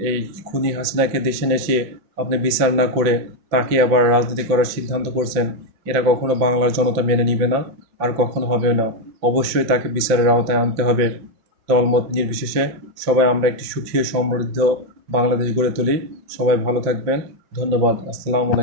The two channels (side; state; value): left; late; 5.6 ms